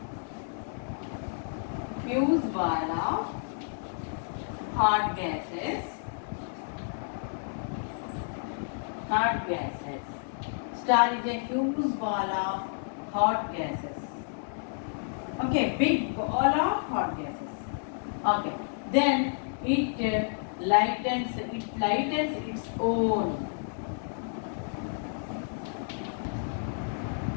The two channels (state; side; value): silent; right; digital silence